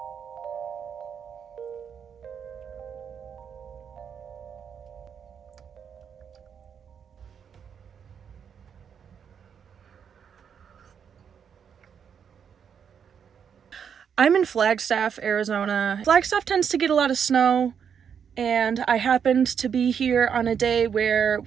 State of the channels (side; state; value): left; quieter; 7.5 dB